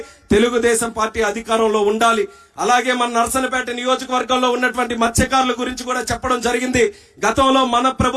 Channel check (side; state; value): both; identical; correlation 1.00